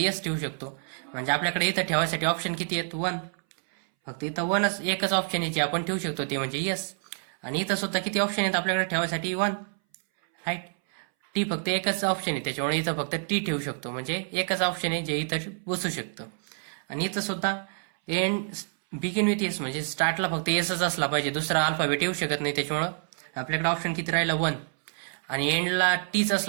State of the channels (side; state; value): left; silent; 60 dB below the other